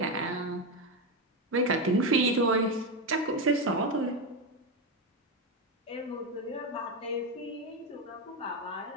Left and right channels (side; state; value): both; normal; correlation 0.11